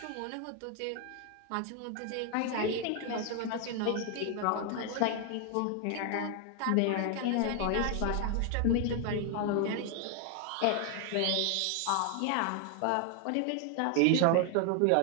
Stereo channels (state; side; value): different; both; correlation 0.01